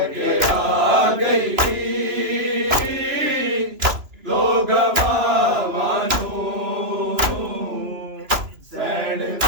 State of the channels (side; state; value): left; late; 2.9 ms